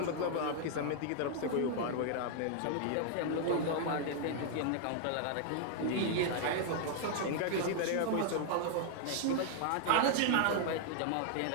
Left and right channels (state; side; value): different; both; correlation 0.00